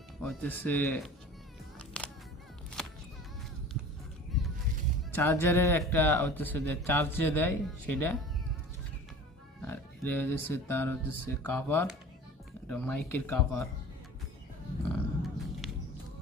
হচ্ছে চার্জারের একটা হচ্ছে যে চার্জে দেয় সেটা, আর এটা হচ্ছে তার হচ্ছে কভার, এটা মাইকের কভার।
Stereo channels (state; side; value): normal; both; correlation 0.41